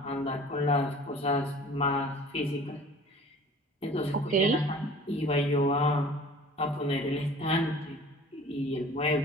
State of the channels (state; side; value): normal; both; correlation 0.46